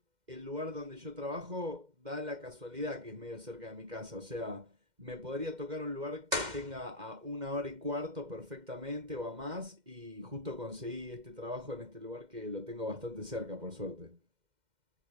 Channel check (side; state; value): left; late; 2.1 ms